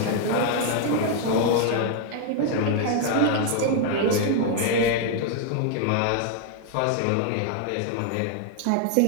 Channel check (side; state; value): both; different; correlation 0.00